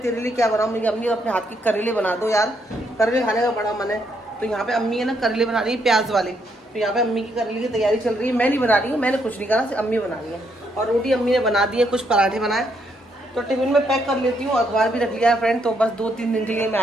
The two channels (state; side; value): normal; both; correlation 0.75